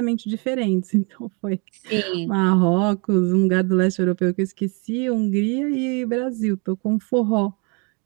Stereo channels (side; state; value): left; quieter; 33.2 dB